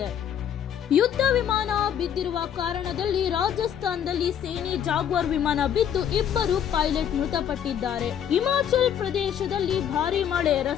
ಯುದ್ಧ ವಿಮಾನ ಬಿದ್ದಿರುವ ಕಾರಣದಲ್ಲಿ ರಾಜಸ್ಥಾನದಲ್ಲಿ ಸೇನೆ ಜಾಗ್ವಾರ್ ವಿಮಾನ ಬಿದ್ದು 2 ಪೈಲಟ್ ಮೃತಪಟ್ಟಿದ್ದಾರೆ. ಹಿಮಾಚಲ್ ಪ್ರದೇಶದಲ್ಲಿ ಭಾರೀ ಮಳೆ,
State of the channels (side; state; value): right; quieter; 9.2 dB